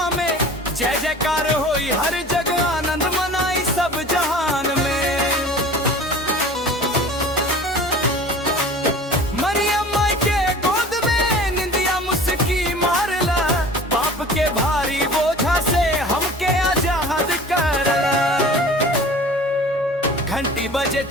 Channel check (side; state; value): both; normal; correlation 0.42